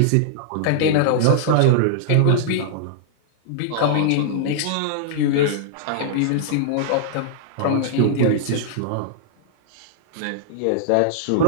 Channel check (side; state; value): both; different; correlation -0.01